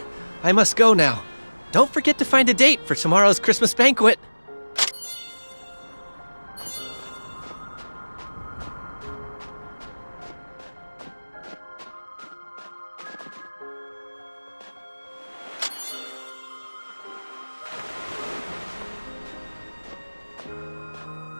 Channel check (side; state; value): both; inverted; correlation -1.00